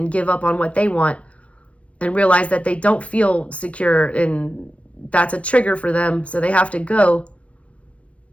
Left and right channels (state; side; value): late; right; 0.063 ms